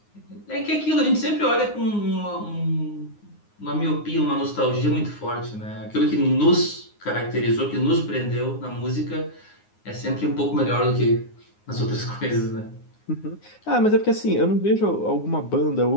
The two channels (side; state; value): right; late; 9.6 ms